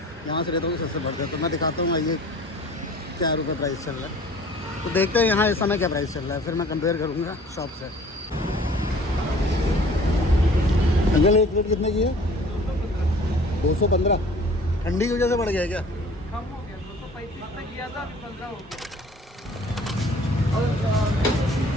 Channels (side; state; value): both; normal; correlation 0.49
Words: यहाँ से लेता हूँ सस्ते पड़ते हैं। तो मैं दिखाता हूँ ये क्या रुपये प्राइस चल रहा है, तो देखते हैं यहाँ इस समय क्या प्राइस चल रहा है, फिर मैं कंपेयर करूँगा शॉप से। अंकल एक प्लेट कितने की है? 215। ठंडी की वजह से बढ़ गया क्या? कम हो गया, 235 तक किया था, अभी 15 हो गया।